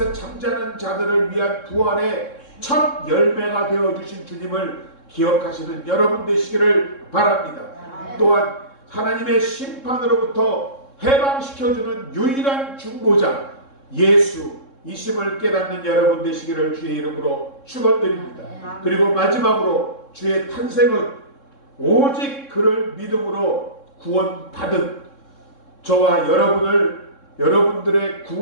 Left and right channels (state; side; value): late; right; 3.7 ms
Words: 잠자는 자들을 위한 부활의 첫 열매가 되어주신 주님을 기억하시는 여러분 되시기를 바랍니다. 또한 하나님의 심판으로부터 해방시켜주는 유일한 중보자 예수이심을 깨닫는 여러분 되시기를 주의 이름으로 축원드립니다. 그리고 마지막으로 주의 탄생은 오직 그를 믿음으로 구원받은 저와 여러분들의